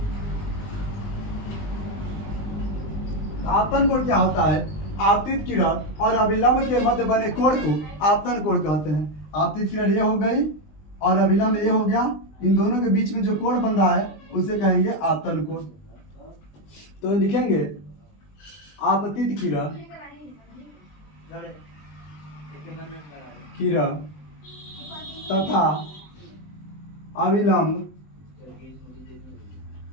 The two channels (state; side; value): late; right; 20 ms